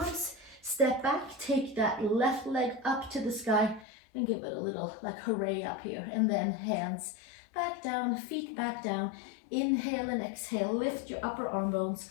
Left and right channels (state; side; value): drops out; right; at 3.9 s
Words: step back, take that left leg up to the sky and give it a little like hooray up here, and then hands back down, feet back down. Inhale and exhale, lift your upper arm bones,